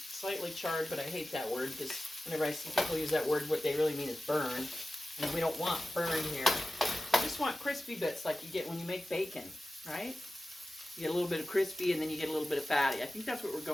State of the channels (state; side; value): normal; both; correlation 0.95